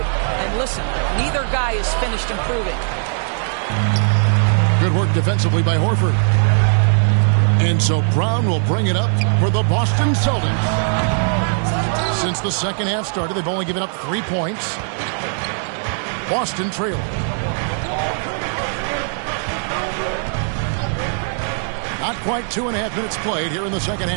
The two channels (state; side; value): silent; left; 63 dB below the other